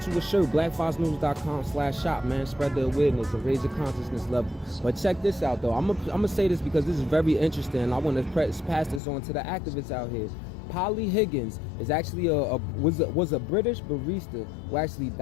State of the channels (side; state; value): right; drops out; at 9.0 s